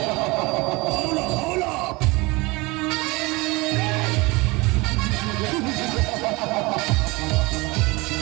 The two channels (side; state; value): left; quieter; 24.3 dB